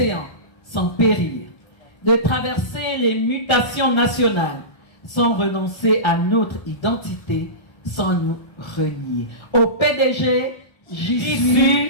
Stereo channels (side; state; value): right; late; 1.3 ms